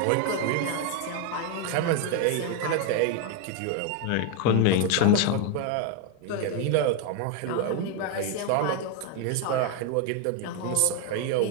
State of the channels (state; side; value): different; both; correlation 0.01